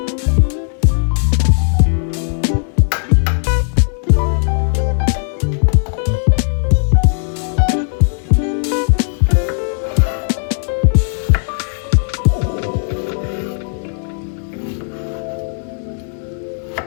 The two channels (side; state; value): right; silent; 61 dB below the other